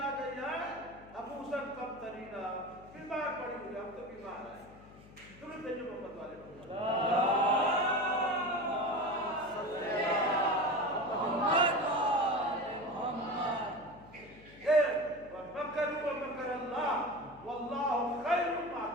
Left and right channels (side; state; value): left; noise; hum, 21 dB below the sound